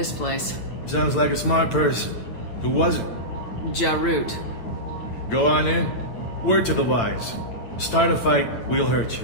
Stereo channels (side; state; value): right; late; 8.9 ms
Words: place. Sounds like a smart person. Who was it? Harrot. Go on in. Word to the wise. Start a fight, we'll hurt